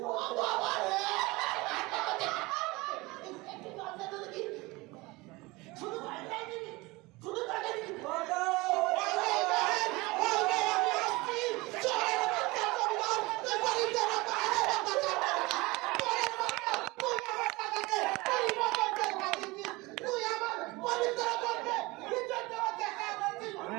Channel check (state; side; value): quieter; left; 22.8 dB